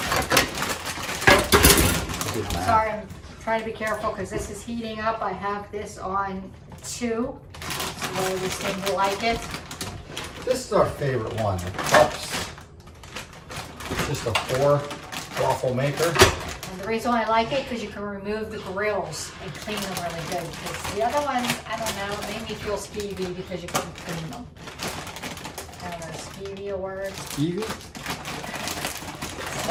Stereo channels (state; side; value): identical; both; correlation 1.00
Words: Sorry, I'm trying to be careful because this is heating up. I have this on 2, so we seem to like it. This is our favorite one, the cups. Just a 4 waffle maker. And the reason why I like it because you can remove the grills and clean them really good. Because the other ones, I don't know, it made me feel skeevy because you couldn't clean them. I don't know, skeevy a word? Skeevy?